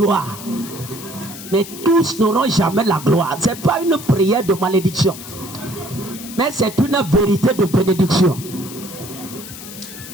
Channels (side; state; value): left; noise; hiss, 13 dB below the sound